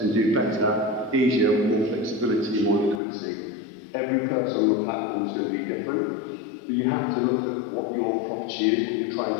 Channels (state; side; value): drops out; right; at 3.0 s